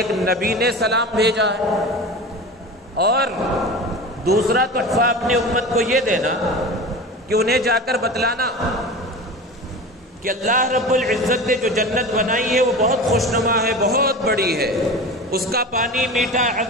نبی نے سلام بھیجا ہے. اور دوسرا تحفہ اپنی امت کو یہ دینا کہ انہیں جا کر بتلانا کہ اللہ رب العزت نے جو جنت بنائی ہے وہ بہت خوشنما ہے، بہت بڑی ہے، اس کا پانی میٹھا ہے،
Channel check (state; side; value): normal; both; correlation 0.32